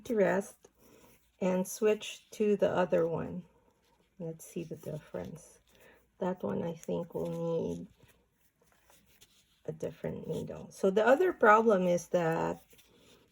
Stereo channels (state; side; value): identical; both; correlation 1.00